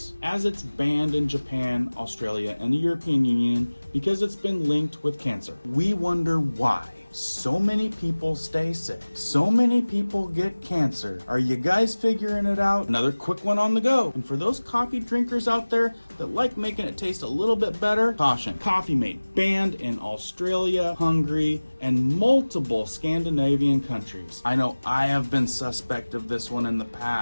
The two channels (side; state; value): both; inverted; correlation -1.00